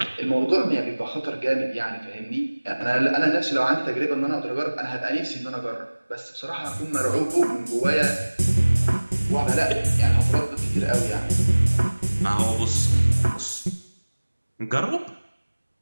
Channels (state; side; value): inverted; both; correlation -1.00